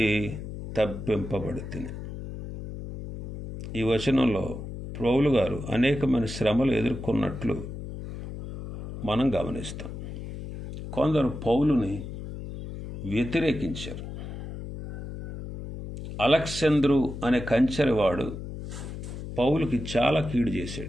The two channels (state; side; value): noise; left; hum, 9 dB below the sound